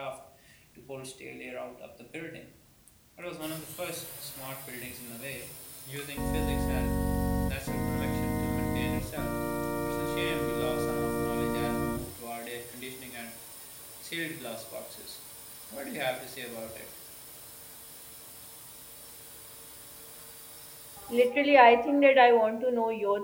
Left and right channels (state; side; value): identical; both; correlation 1.00